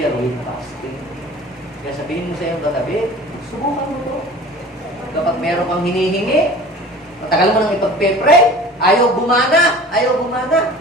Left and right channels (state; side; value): normal; both; correlation 0.42